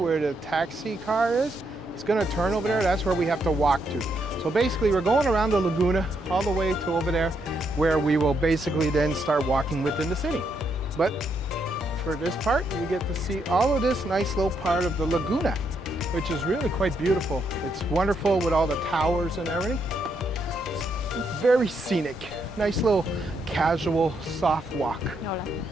the taxi car is? He's gonna turn over there, that's where we have to walk to. So basically we're going around the Laguna all the way to over there, where we will basically then start walking within the city. But for this part, you get to see all of this nice little part of the Laguna, which is really quite beautiful. It's wonderful with all the towers and everything. It's very scenic. Nice little casual, soft walk.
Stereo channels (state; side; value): normal; both; correlation 0.77